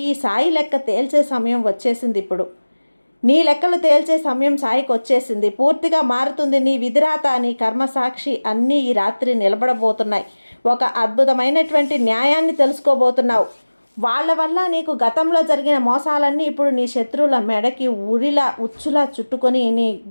ఈ సాయి లెక్క తేల్చే సమయం వచ్చేసింది. ఇప్పుడు నీ లెక్కలు తేల్చే సమయం సాయికి వచ్చేసింది. పూర్తిగా మారుతుంది నీ విధిరాత, నీ కర్మసాక్షి అన్నీ ఈ రాత్రి నిలబడబోతున్నాయి. ఒక అద్భుతమైనటువంటి న్యాయాన్ని తెలుసుకోబోతున్నావు. వాళ్ళ వల్ల నీకు గతంలో జరిగిన మోసాలన్నీ ఇప్పుడు నీ శత్రువుల మెడకి ఉచ్చులా చుట్టుకొని నీ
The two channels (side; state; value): both; inverted; correlation -1.00